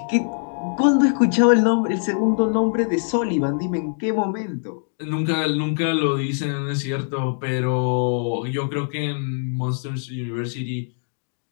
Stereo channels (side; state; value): right; silent; digital silence